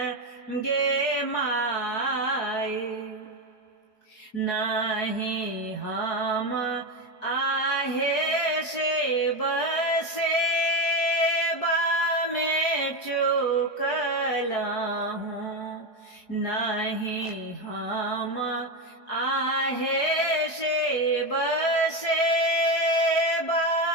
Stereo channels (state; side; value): late; right; 4.8 ms